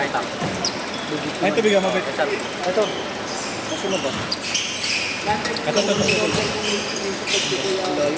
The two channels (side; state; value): both; identical; correlation 1.00